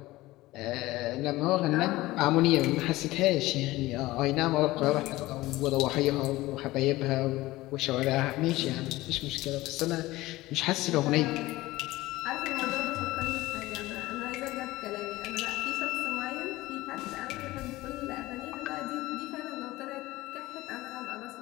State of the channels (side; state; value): right; quieter; 18.4 dB